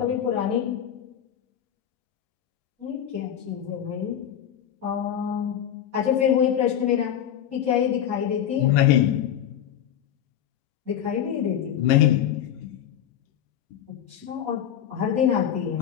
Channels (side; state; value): right; quieter; 10.0 dB